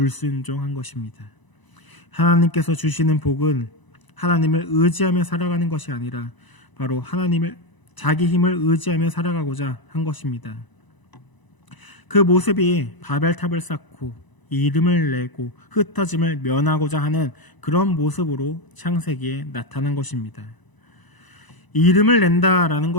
것입니다. 하나님께서 주시는 복은 하나님을 의지하며 살아가는 것이 아니라 바로 자기 힘을 의지하며 살아가고자 한 것입니다. 그 모습이 바벨탑을 쌓고 이름을 내고 흩어짐을 면하고자 하는 그런 모습으로 창세기에 나타난 것입니다. 이름을 낸다라는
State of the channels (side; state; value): right; late; 1.0 ms